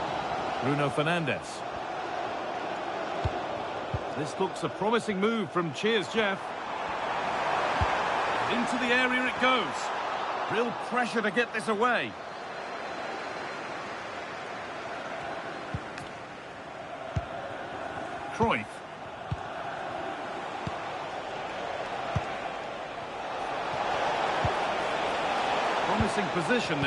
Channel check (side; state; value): both; identical; correlation 1.00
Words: Bruno Fernandes. This looks a promising move from Jeff. Into the area it goes. Real pressure to get this away. Cruyff. From Promising position,